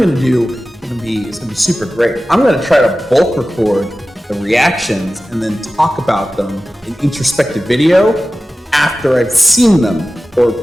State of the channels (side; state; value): both; normal; correlation 0.95